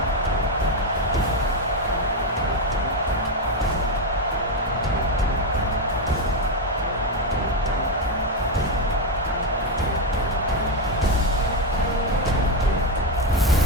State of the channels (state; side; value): normal; both; correlation 0.07